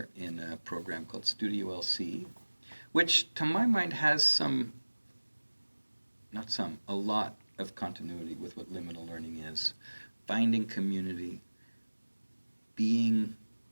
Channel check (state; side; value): inverted; both; correlation -1.00